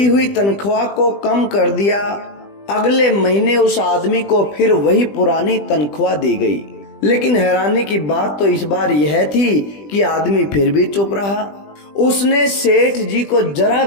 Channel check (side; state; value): right; late; 20 ms